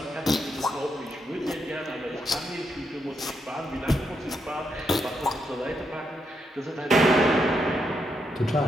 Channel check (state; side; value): normal; both; correlation 0.80